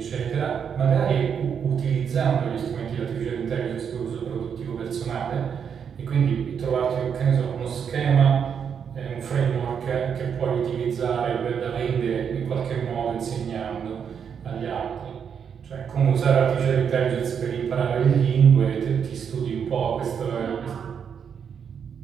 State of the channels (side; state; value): left; quieter; 7.3 dB